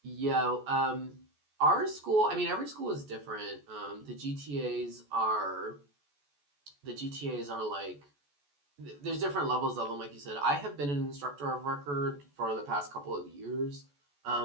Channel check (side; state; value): left; late; 14 ms